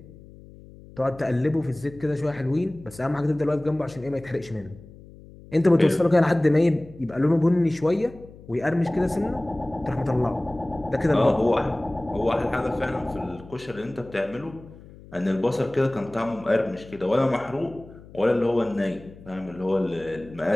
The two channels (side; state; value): left; noise; hum, 20 dB below the sound